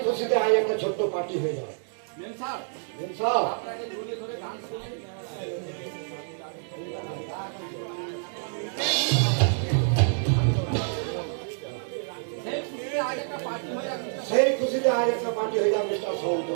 খুশিতে আজ একটা ছোট্ট পার্টি হয়ে যায়। মেম সাহেব, সেই খুশিতে আজ একটা পার্টি হয়ে যাবে মিস্টার সামন্ত।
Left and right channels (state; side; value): silent; left; digital silence